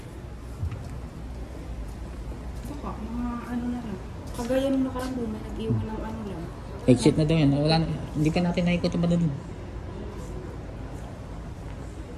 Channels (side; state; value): both; identical; correlation 1.00